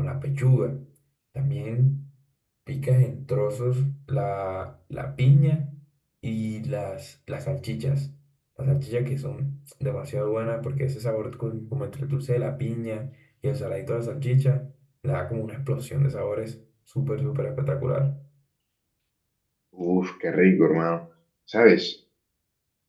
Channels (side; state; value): both; identical; correlation 1.00